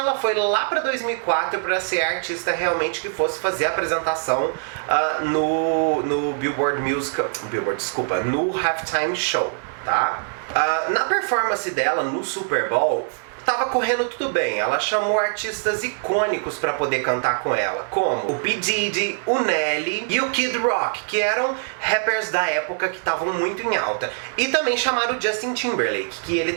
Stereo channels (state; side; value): silent; left; 64 dB below the other